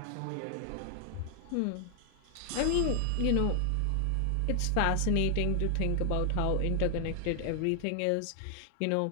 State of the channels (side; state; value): both; different; correlation 0.00